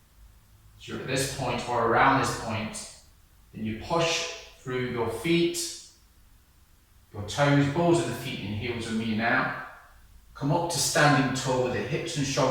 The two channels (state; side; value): identical; both; correlation 1.00